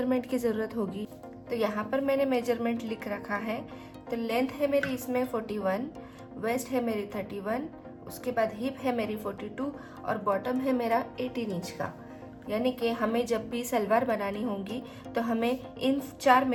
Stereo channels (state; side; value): identical; both; correlation 1.00